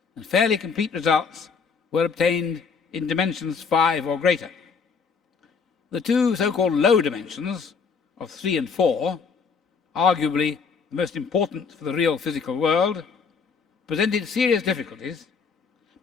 and fairly complete results were obtained in dimensions 5 or greater. The two so-called low dimensions of 3 and 4, arguably the most important for the real physical world, presented serious difficulties,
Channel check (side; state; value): right; quieter; 5.6 dB